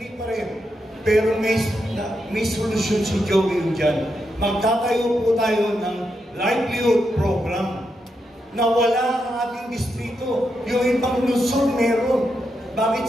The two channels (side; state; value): both; normal; correlation 0.84